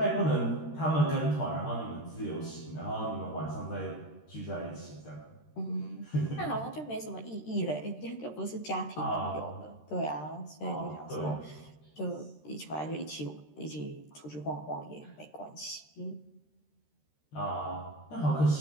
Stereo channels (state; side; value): late; right; 13 ms